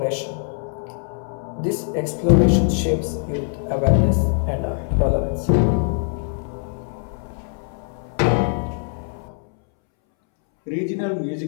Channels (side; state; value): right; silent; 64 dB below the other